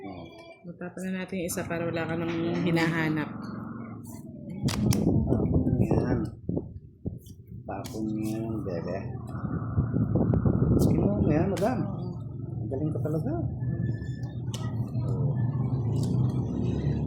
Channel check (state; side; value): identical; both; correlation 1.00